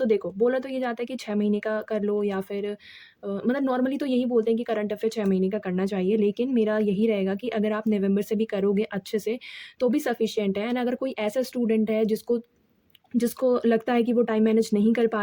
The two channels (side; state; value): both; identical; correlation 1.00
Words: देखो, बोला तो ये जाता है कि 6 महीने का कर लो या फिर मतलब नॉर्मली तो यही बोलते हैं कि करंट अफेयर 6 महीने का करना चाहिए, लेकिन मेरा यही रहेगा कि अगर आप नवंबर से भी करोगे अच्छे से तो भी सफिशिएंट है। एंड अगर कोई ऐसा स्टूडेंट है जिसको जिसको लगता है कि वो टाइम मैनेज नहीं कर पा